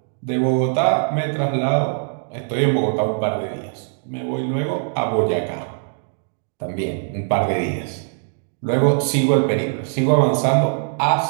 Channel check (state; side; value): silent; left; digital silence